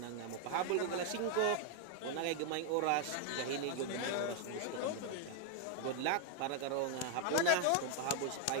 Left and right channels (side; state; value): both; different; correlation 0.00